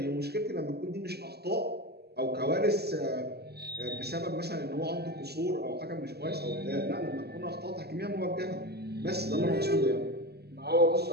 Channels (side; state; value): left; late; 0.47 ms